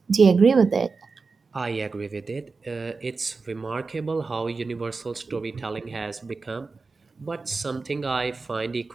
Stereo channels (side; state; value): left; quieter; 4.6 dB